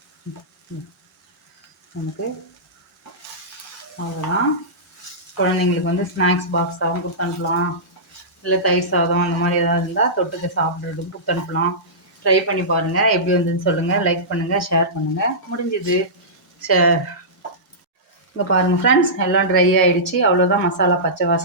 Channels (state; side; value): normal; both; correlation -0.17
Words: நமக்கு அவ்வளோதான். குழந்தைங்களுக்கு வந்து ஸ்நாக்ஸ் பாக்ஸாகவும் கொடுத்து அனுப்பலாம். இல்லை தயிர் சாதம் அந்த மாதிரி ஏதாவது இருந்தால் தொட்டுக்க சாப்பிட்றதுக்கு கொடுத்து அனுப்பலாம். ட்ரை பண்ணி பாருங்கள். எப்படி வந்ததுன்னு சொல்லுங்கள். லைக் பண்ணுங்கள், ஷேர் பண்ணுங்கள். முடிஞ்சுது. இங்கே பாருங்கள் ஃப்ரெண்ட்ஸ், எல்லாம் ட்ரை ஆகிடுச்சு. அவ்வளோதான். மசாலா பச்சை